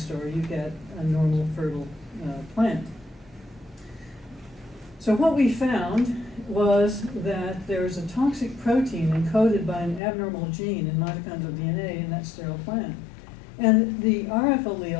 you get a normal fertile plant. So what we found was that there is a toxic protein encoded by an abnormal gene in mitochondrial DNA in that sterile plant. And the RF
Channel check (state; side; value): drops out; right; at 10.0 s